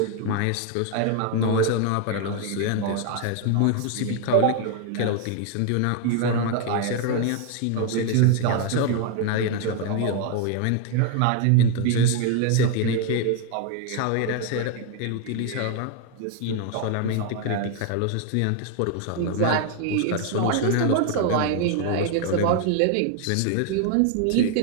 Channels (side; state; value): both; different; correlation 0.00